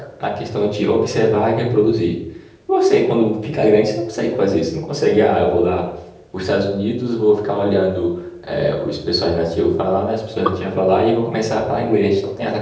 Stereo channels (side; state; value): both; identical; correlation 1.00